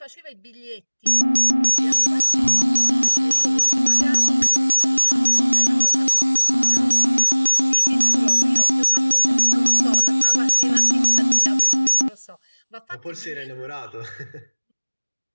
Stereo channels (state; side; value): inverted; both; correlation -1.00